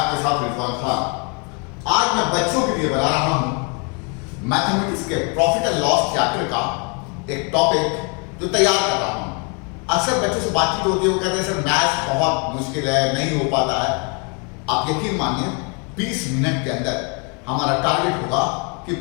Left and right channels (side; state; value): right; quieter; 34.9 dB